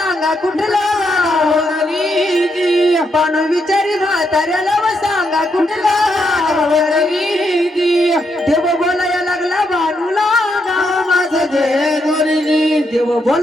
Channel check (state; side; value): normal; both; correlation 0.79